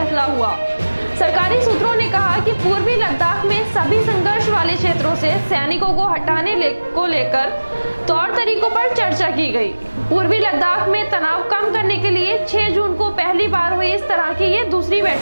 हुआ। सरकारी सूत्रों ने कहा कि पूर्वी लद्दाख में सभी संघर्ष वाले क्षेत्रों से सैनिकों को हटाने को लेकर तौर तरीकों पर चर्चा की गई। पूर्वी लद्दाख में तनाव कम करने के लिए 6 जून को पहली बार हुई इस तरह की ये दूसरी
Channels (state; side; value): inverted; both; correlation -1.00